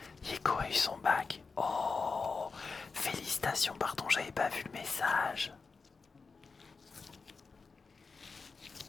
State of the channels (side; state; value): right; quieter; 4.6 dB